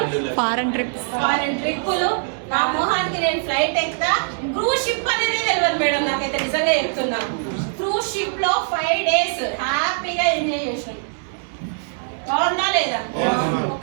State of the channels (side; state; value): left; silent; digital silence